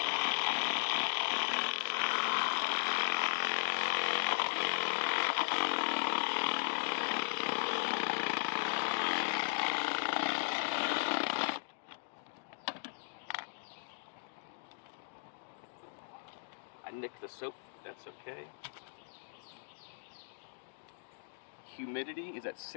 I nicked the soap, that's okay. Humidity is at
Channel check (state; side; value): silent; right; digital silence